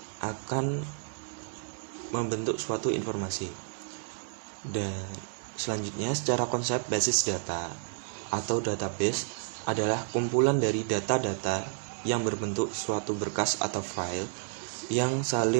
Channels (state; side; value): silent; left; digital silence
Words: akan membentuk suatu informasi. Dan selanjutnya, secara konsep basis data atau database adalah kumpulan dari data-data yang berbentuk suatu berkas atau file yang